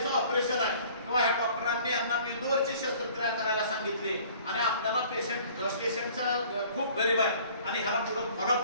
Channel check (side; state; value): both; inverted; correlation -0.52